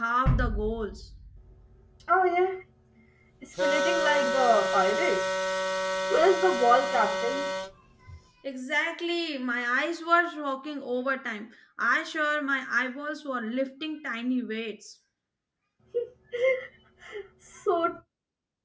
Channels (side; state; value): both; identical; correlation 1.00